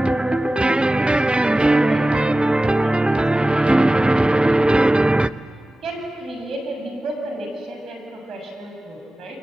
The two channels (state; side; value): normal; both; correlation 0.96